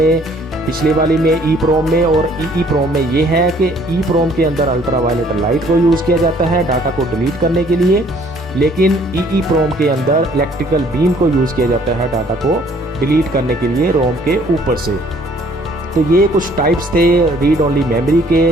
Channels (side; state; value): both; normal; correlation 0.60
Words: पिछले वाली में ई प्रोम में और ई प्रोम में ये है कि ई प्रोम के अंदर अल्ट्रा वायलेट लाइट को यूज़ किया जाता है डाटा को डिलीट करने के लिए, लेकिन ई प्रोम के अंदर इलेक्ट्रिकल बीम को यूज़ किया जाता है डाटा को डिलीट करने के लिए रोम के ऊपर से। तो ये कुछ टाइप्स थे रीड ओनली मेमोरी